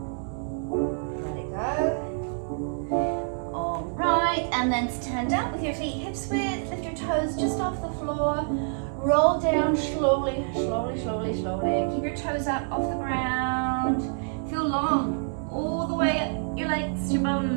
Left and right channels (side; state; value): left; silent; 60 dB below the other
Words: Let it go. All right, and then stand up with your feet hips width. Lift your toes just off the floor. Roll down slowly, slowly, slowly, slowly. Keep your toes up off the ground. Feel long all the way up your legs, your